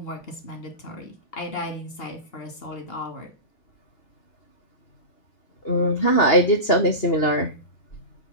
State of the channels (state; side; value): late; right; 2.8 ms